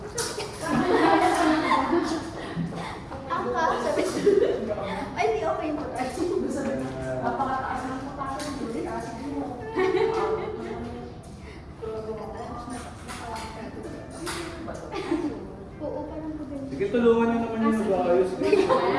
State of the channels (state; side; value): identical; both; correlation 1.00